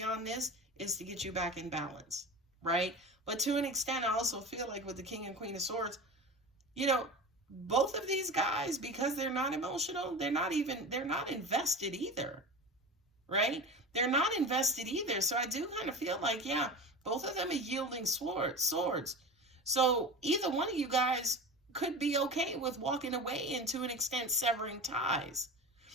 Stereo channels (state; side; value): normal; both; correlation 0.31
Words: this is to get you back in balance, right? But to an extent, I also feel like with the King and Queen of Swords, you know, both of these guys, because they're not emotional, they're not invested either, right? They're not invested either. So I do kind of feel like, yeah, both of them are yielding swords. So either one of you guys could be okay with walking away and to an extent severing ties.